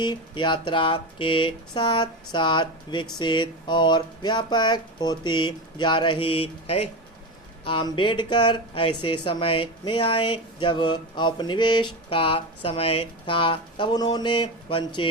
यात्रा के साथ साथ विकसित और व्यापक होती जा रही है। अंबेडकर ऐसे समय में आए जब औपनिवेश का समय था। तब उन्होंने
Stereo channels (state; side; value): normal; both; correlation 0.20